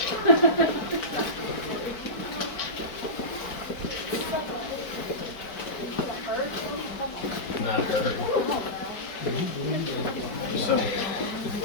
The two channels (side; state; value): right; late; 4.9 ms